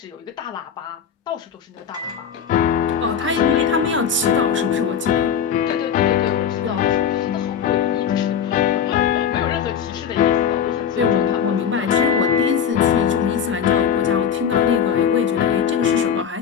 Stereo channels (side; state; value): right; quieter; 7.8 dB